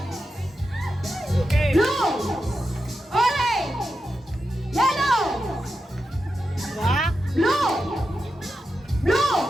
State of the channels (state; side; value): normal; both; correlation 0.89